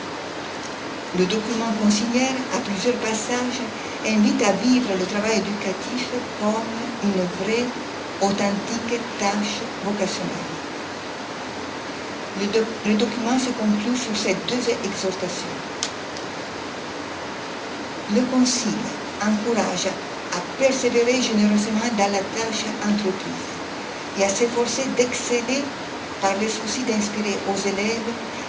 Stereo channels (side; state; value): both; identical; correlation 1.00